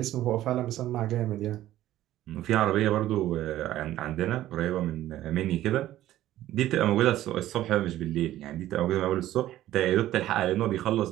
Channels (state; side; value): quieter; left; 13.9 dB